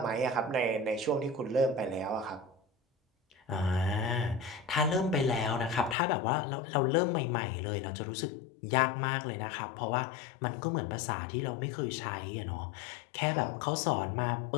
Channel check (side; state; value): right; drops out; at 6.0 s